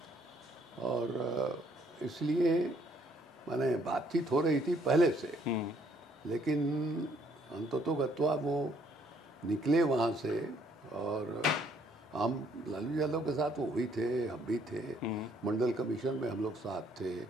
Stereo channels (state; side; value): normal; both; correlation 0.66